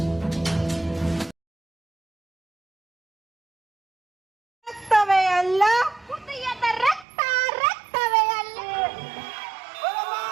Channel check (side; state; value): left; drops out; at 7.1 s